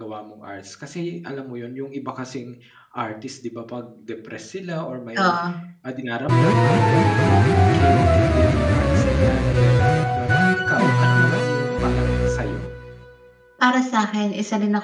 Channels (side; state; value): both; identical; correlation 1.00